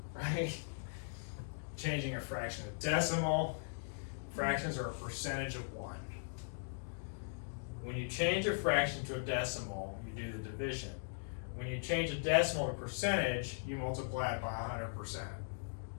right? Changing a fraction to decimal. Fractions are a percentage of 1. When you change a fraction to a decimal, you do the division. When you change a decimal to percentage, you multiply it by 100%.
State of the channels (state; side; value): silent; right; digital silence